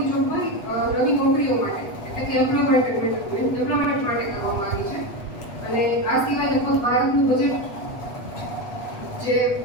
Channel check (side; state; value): right; late; 8.1 ms